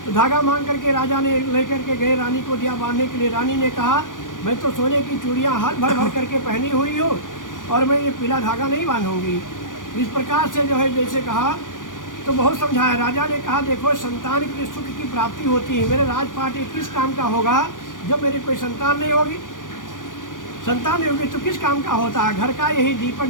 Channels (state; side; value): late; right; 0.88 ms